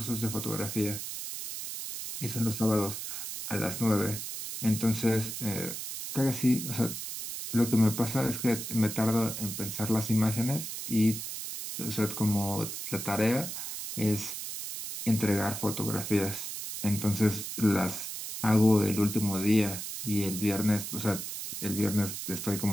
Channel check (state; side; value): noise; right; hiss, 6 dB below the sound